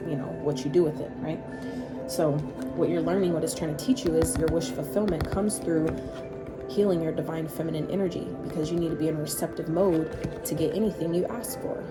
you know, what you do with it, right? So what you're learning, what it's trying to teach you, is your wish fulfillment comes through healing your divine feminine energy, because you need to be in a receptive mode to get anything you ask for,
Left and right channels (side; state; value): both; identical; correlation 1.00